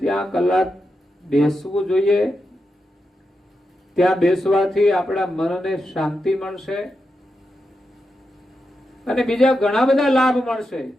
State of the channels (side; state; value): both; normal; correlation 0.87